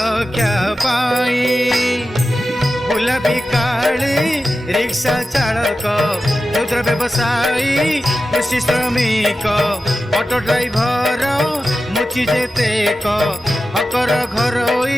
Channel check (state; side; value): normal; both; correlation 0.93